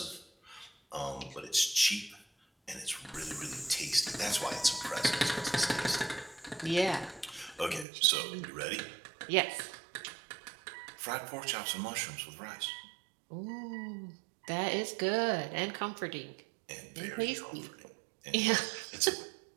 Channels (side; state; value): left; drops out; at 7.9 s